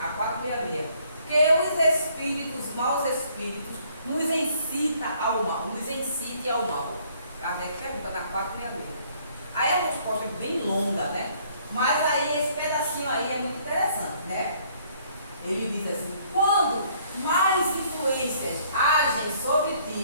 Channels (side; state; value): both; inverted; correlation -0.63